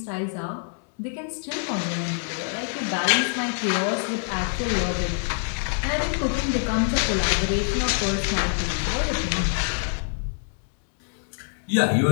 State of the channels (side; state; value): right; silent; digital silence